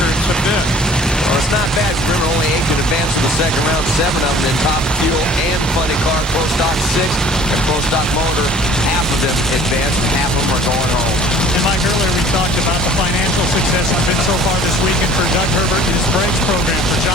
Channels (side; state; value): both; normal; correlation 0.50